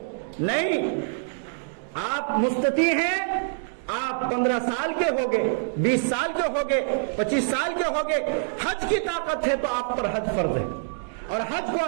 نہیں، آپ مستطیع ہیں، آپ 15 سال کے ہوگے، 20 سال کے ہوگے، 25 سال کے ہوگے، حج کی طاقت ہے تو آپ پر حج فرض ہے، اور حج کو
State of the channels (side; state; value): left; silent; digital silence